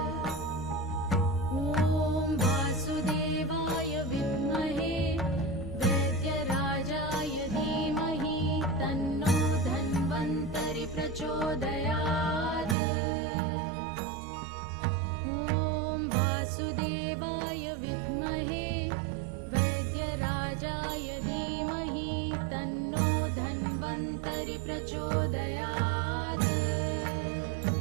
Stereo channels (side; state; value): left; drops out; at 12.8 s